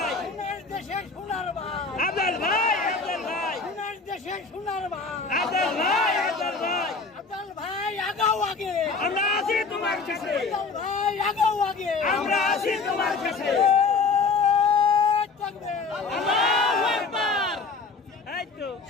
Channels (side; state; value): right; quieter; 4.4 dB